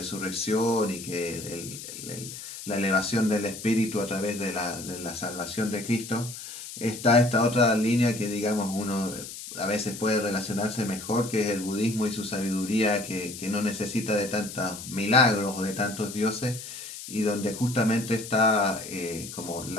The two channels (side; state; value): left; noise; hiss, 11 dB below the sound